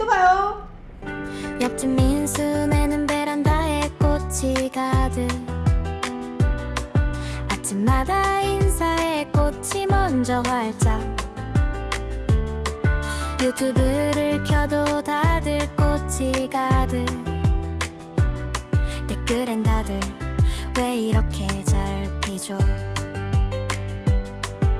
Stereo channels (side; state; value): both; identical; correlation 1.00